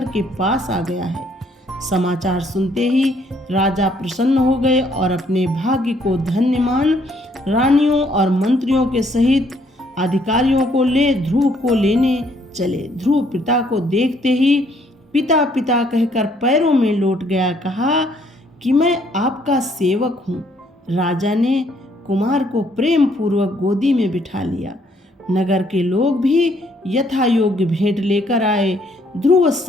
के पास आ गया है। समाचार सुनते ही राजा प्रसन्न हो गए और अपने भाग्य को धन्य मान रानियों और मंत्रियों के सहित अधिकारियों को ले ध्रुव को लेने चले। ध्रुव पिता को देखते ही पिता पिता कहकर पैरों में लौट गया। कहा कि मैं आपका सेवक हूँ। राजा ने कुमार को प्रेम पूर्वक गोदी में बिठा लिया। नगर के लोग भी यथा योग्य भेंट लेकर आए। ध्रुव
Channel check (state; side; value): normal; both; correlation 0.67